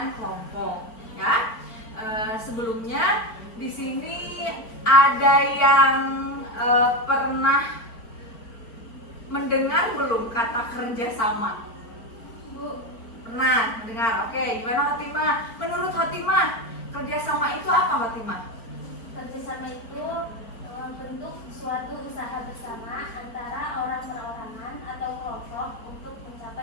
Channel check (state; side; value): late; right; 4.4 ms